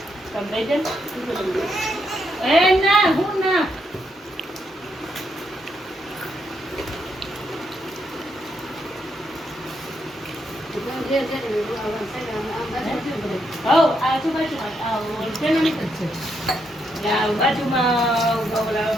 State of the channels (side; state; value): both; normal; correlation 0.78